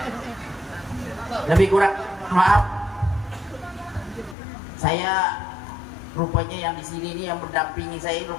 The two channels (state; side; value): drops out; right; at 4.4 s